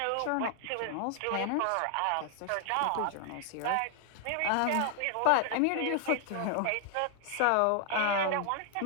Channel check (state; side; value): different; both; correlation 0.00